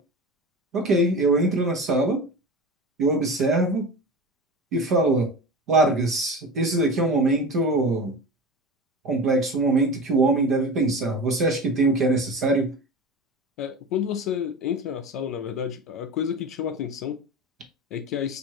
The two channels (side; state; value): both; normal; correlation 0.30